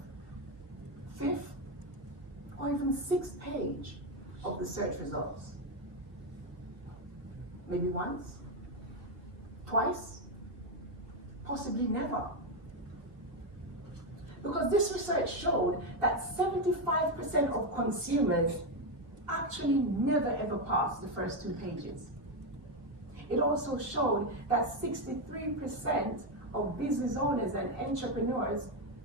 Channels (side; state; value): left; late; 3.2 ms